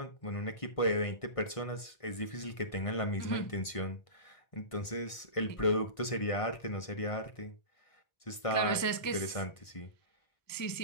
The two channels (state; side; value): late; right; 1.5 ms